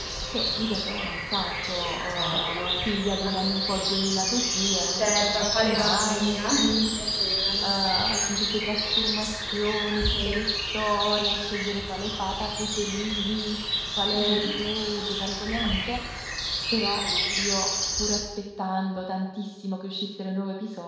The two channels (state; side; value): identical; both; correlation 1.00